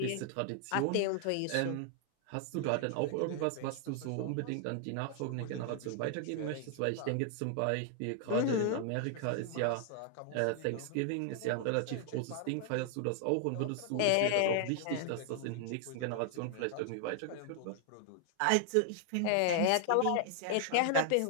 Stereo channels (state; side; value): different; both; correlation 0.00